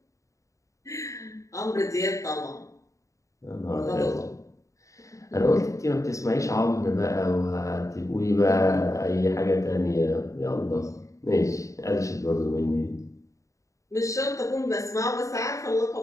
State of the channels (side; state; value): right; late; 0.15 ms